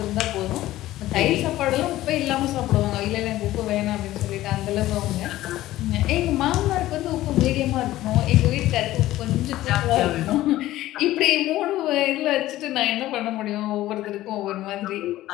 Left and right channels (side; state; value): right; quieter; 15.4 dB